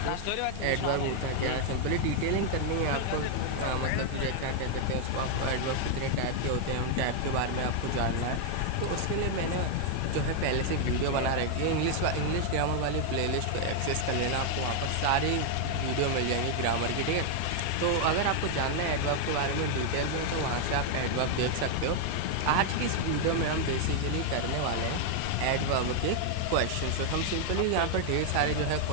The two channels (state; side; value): different; both; correlation 0.00